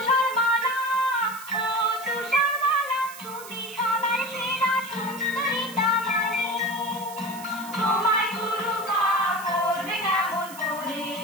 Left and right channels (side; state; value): right; noise; hiss, 15 dB below the sound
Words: ও তুষারমালা, তুমি সবার সেরা সুন্দরী দামানি। তোমায় গুরু মা করবে কেমন করে,